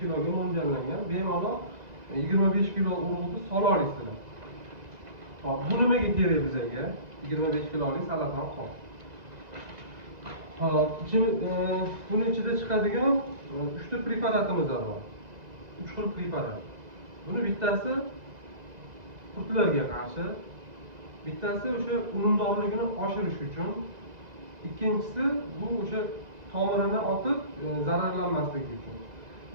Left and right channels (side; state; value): left; late; 2.0 ms